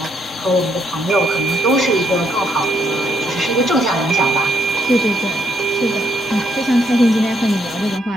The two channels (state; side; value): normal; both; correlation 0.74